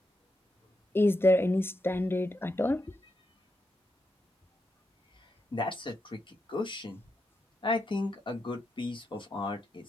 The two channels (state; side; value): normal; both; correlation 0.84